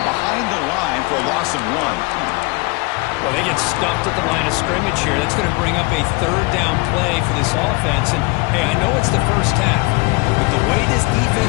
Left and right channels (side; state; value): right; quieter; 26.8 dB